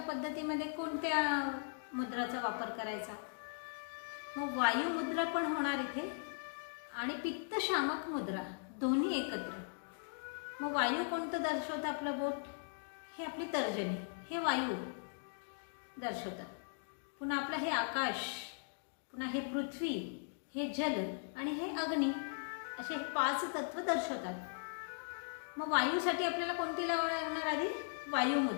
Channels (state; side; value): silent; right; digital silence